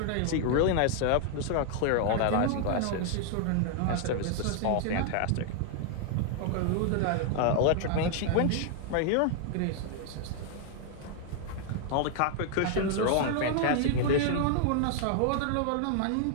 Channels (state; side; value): different; both; correlation 0.00